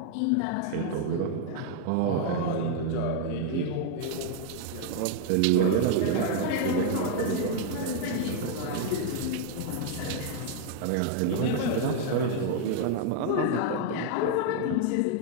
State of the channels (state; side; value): different; both; correlation 0.00